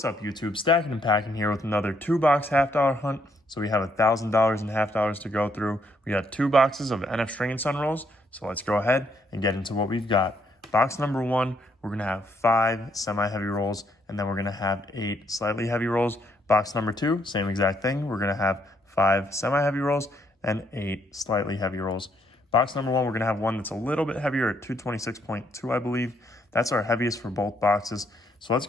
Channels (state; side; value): normal; both; correlation 0.72